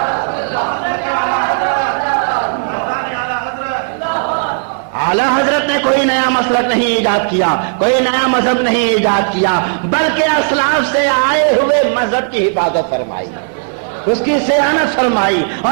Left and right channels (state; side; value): silent; left; digital silence